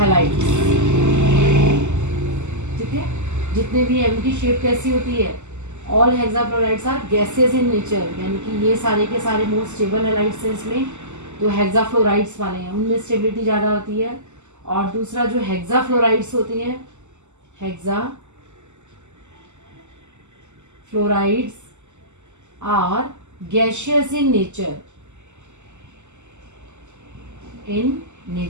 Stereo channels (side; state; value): left; late; 0.83 ms